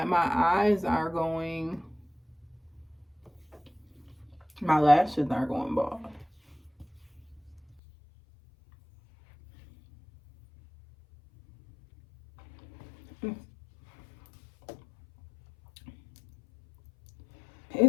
my eyes are going, my lashes are going bald.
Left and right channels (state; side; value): drops out; right; at 7.8 s